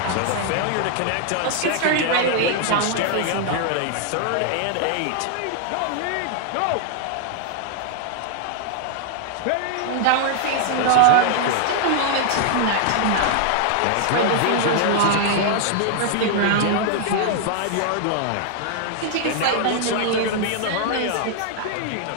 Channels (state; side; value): different; both; correlation 0.00